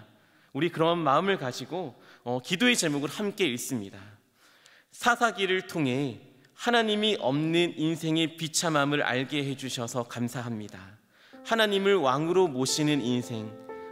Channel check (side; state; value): both; identical; correlation 1.00